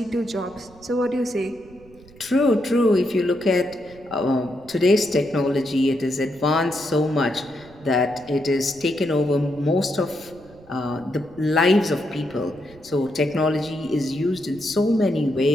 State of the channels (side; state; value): right; noise; rumble, 23 dB below the sound